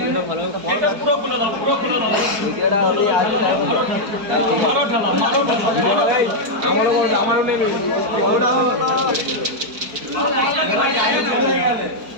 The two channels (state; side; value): late; left; 4.5 ms